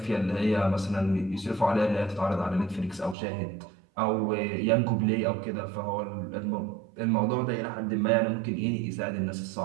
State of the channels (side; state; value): left; drops out; at 3.2 s